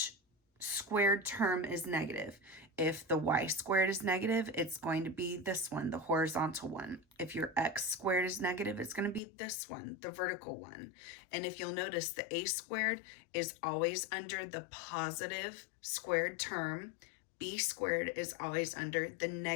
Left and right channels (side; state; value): right; drops out; at 9.2 s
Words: squared term is negative. If the y squared is negative, it's going to be this one, the horizontal one. If your x squared is negative, it's going to be this one, the vertical one. And if you'll notice, the a squared is always under the positive squared term. B squared is always under the